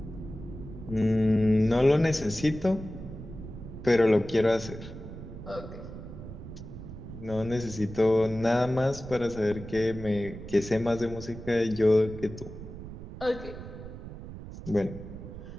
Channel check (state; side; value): noise; right; rumble, 12 dB below the sound